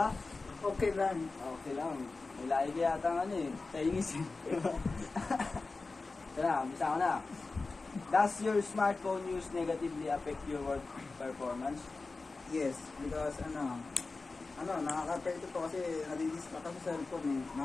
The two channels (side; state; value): right; quieter; 3.8 dB